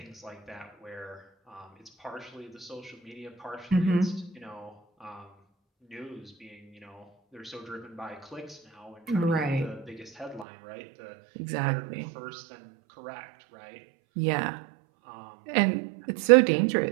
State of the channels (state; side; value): drops out; left; at 10.5 s